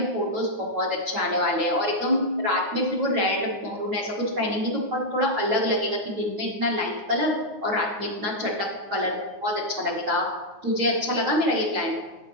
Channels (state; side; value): late; left; 9.6 ms